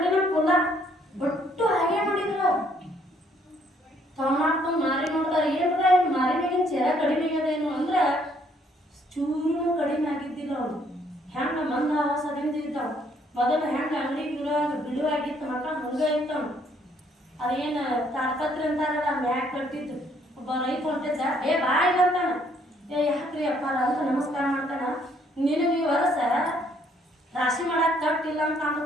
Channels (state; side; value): normal; both; correlation 0.66